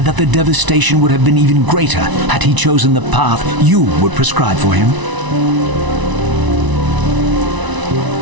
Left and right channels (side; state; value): left; late; 1.0 ms